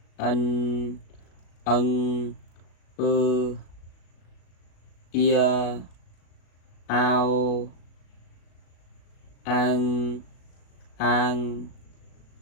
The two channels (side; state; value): right; late; 37 ms